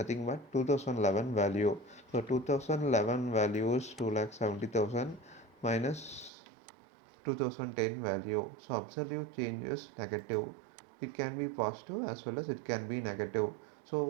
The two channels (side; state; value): left; drops out; at 6.3 s